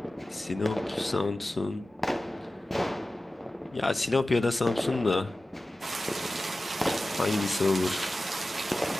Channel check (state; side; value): normal; both; correlation 0.95